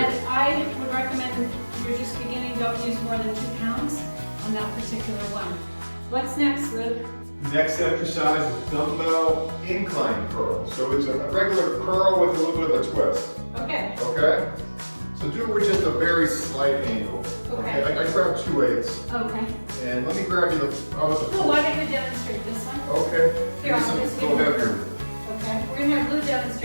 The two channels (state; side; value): inverted; both; correlation -1.00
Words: good. I would recommend if you're just beginning, don't use more than 2 pounds on that particular one. What's next, Luke? Next exercise is dumbbell incline curl. So it's a regular curl with a little bit of a twist. Okay. Okay? So do it with just a very slight angle. Okay. I grab 2 weights. Okay. And let me grab you the, how about the Well, why don't you demonstrate this one? Okay. Here, I'll just Go give you- heavier. Okay, we're gonna have Lou